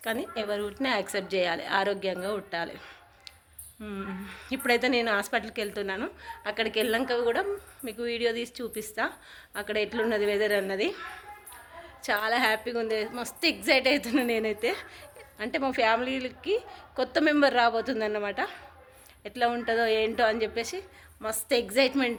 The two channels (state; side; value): identical; both; correlation 1.00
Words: కానీ ఎవరు పుట్టినా యాక్సెప్ట్ చేయాలి, ఆరోగ్యంగా పుట్టాలి. ఇప్పుడైతే నేను హాస్పిటల్కి వెళ్తున్నాను. అక్కడికి వెళ్ళాక కూడా మీకు వీడియో తీసి చూపిస్తా, అక్కడ ఎట్లున్నది వెదర్ అన్నది. చాలా హ్యాపీగా ఉంది, మస్తు ఎగ్జైట్ అవుతున్నా నేనైతే. అంటే మా ఫ్యామిలీకి కొత్త మెంబర్ రాబోతుంది అన్నమాట. ఎట్లా ఉంటుందో ఏంటో అని చెప్పేసి మస్తు